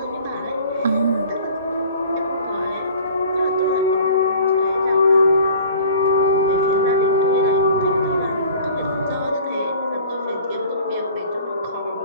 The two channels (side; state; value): both; inverted; correlation -0.46